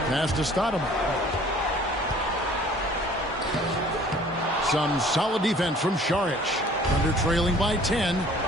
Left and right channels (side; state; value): both; normal; correlation 0.52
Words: Pass to Stoudemire. Some solid defense from Šarić. Under trailing by 10.